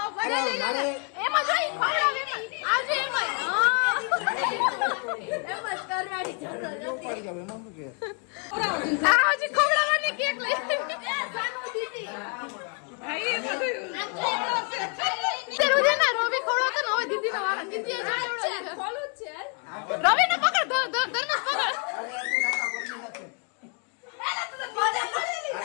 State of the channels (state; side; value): quieter; right; 39.4 dB